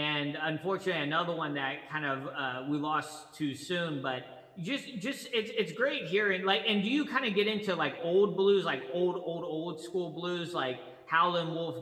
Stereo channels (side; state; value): both; identical; correlation 1.00